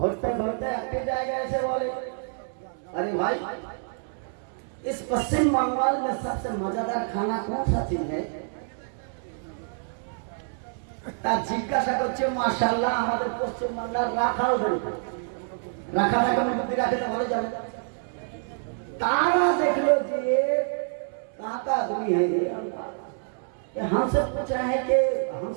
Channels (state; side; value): silent; left; 60 dB below the other